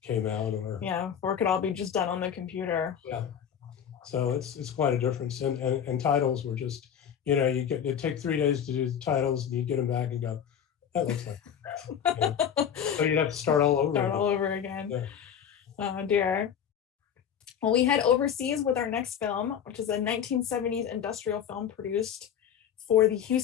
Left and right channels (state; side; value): quieter; right; 8.6 dB